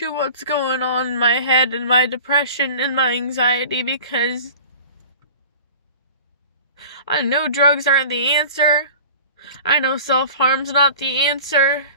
what's going on in my head and my depression and my anxiety, because I know drugs aren't the answer. I know self-harm's not the answer.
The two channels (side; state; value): both; inverted; correlation -0.41